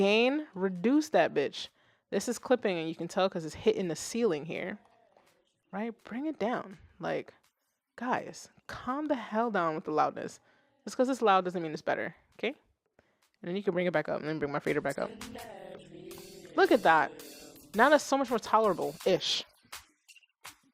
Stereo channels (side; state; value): both; identical; correlation 1.00